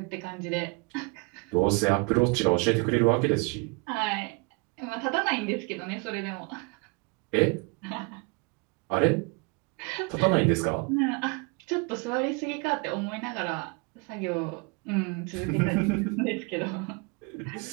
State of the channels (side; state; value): left; quieter; 30.3 dB